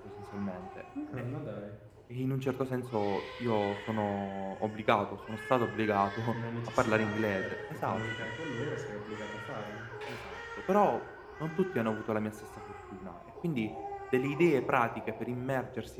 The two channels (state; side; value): identical; both; correlation 1.00